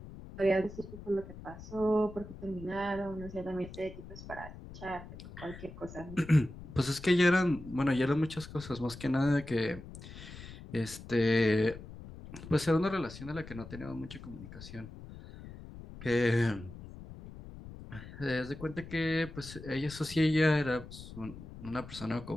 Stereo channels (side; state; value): left; noise; rumble, 14 dB below the sound